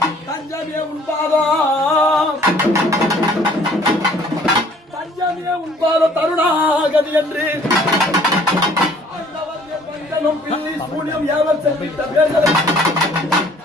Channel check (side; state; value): both; normal; correlation 0.56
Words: தஞ்சமே உண்பாதம் தஞ்சமே உண்பாத தருணாகதி என்று சூனியம் ஏவல் செல்வித்த பேர்களை